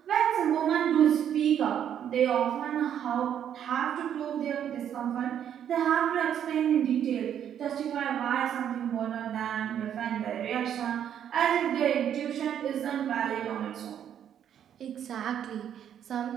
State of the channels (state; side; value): quieter; left; 9.5 dB